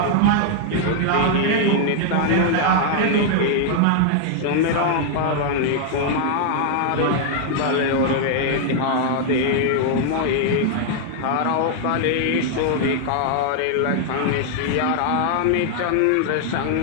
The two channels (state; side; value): different; both; correlation 0.00